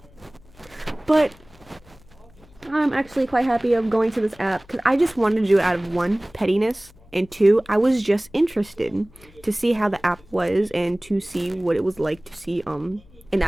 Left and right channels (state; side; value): noise; left; hum, 26 dB below the sound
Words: But I'm actually quite happy of going to this app because I just wanted to do it out of one, pettiness, and two, I was just interested to see how the app was and to see what it was like to see an